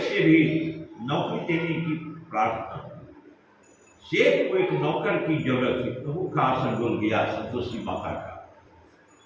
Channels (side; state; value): both; identical; correlation 1.00